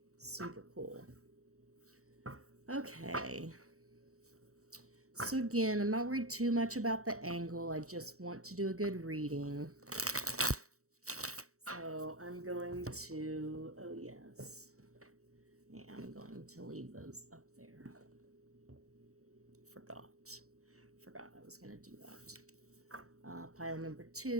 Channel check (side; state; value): left; late; 0.65 ms